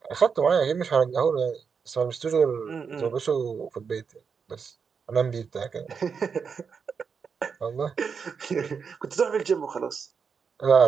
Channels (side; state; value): left; quieter; 6.0 dB